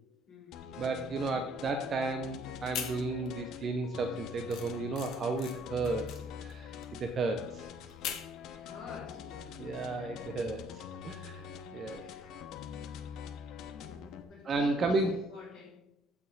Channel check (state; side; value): normal; both; correlation 0.63